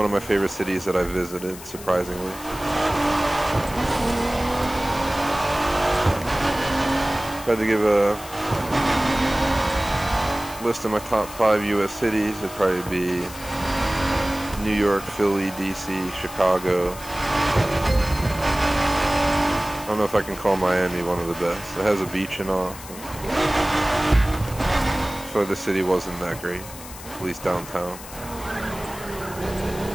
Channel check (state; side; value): noise; left; hiss, 15 dB below the sound